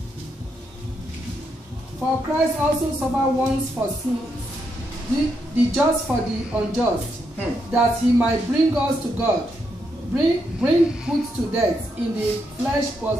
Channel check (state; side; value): normal; both; correlation 0.80